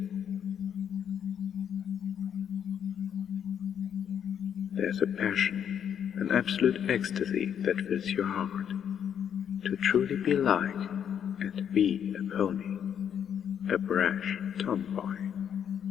There's a passion, an absolute ecstasy that fills your heart. To truly be like and be a pony, a brash tomboy,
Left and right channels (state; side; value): quieter; right; 8.7 dB